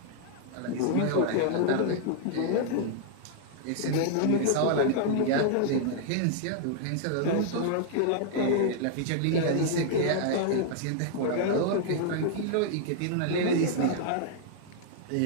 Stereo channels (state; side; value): different; both; correlation 0.00